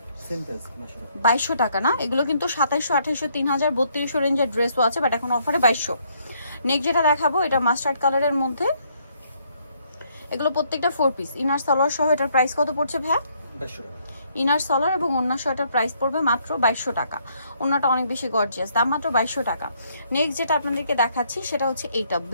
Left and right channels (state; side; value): inverted; both; correlation -0.69